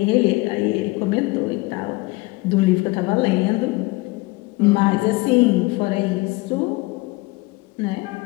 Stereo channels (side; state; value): right; quieter; 23.1 dB